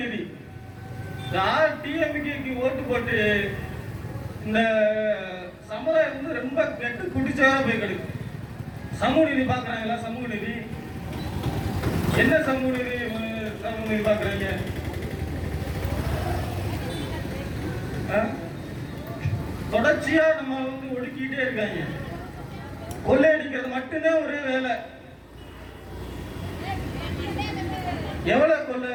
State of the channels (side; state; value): both; identical; correlation 1.00